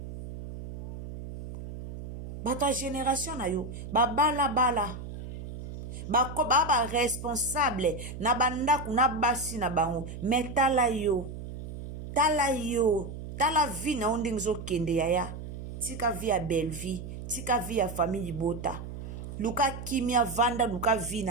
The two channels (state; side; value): noise; right; hum, 10 dB below the sound